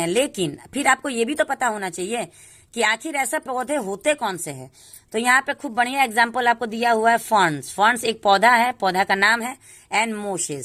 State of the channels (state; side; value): identical; both; correlation 1.00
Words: लेकिन फिर आपको ये भी तो पता होना चाहिए कि आखिर ऐसे पौधे होते कौन से हैं। तो यहाँ पे खूब बढ़िया एग्जाम्पल आपको दिया हुआ है फर्न्स। फर्न्स एक पौधा है, पौधा का नाम है, एंड